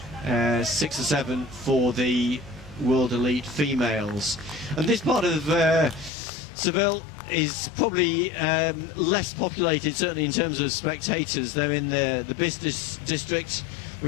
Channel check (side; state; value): right; drops out; at 6.1 s